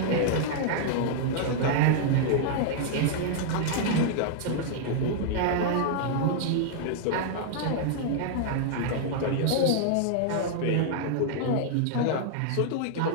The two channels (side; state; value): both; different; correlation -0.01